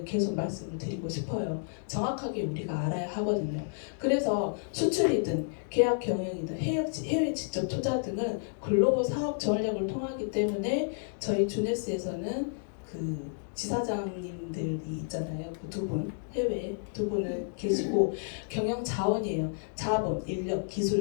계속 말씀을 드리고 싶어요. 정확하게 우리가 알아야 하거든요. 그래서 수출이든 계약 경영이든 해외 직접 투자 등은 글로벌 사업 전략을 통하기 때문에 저희 주네스에서는 그 지사장님들이 있잖아요. 그 두 분, 해외에 두 분을 계시고 경영 자원이에요. 자본, 인력,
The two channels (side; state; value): right; silent; digital silence